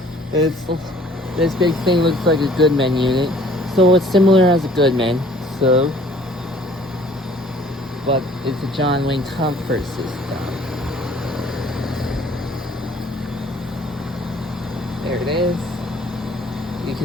This big thing looks like a Goodman unit, so it's similar as a Goodman. But it's a John Wayne comfort system. There it is. You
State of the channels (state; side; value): normal; both; correlation 0.55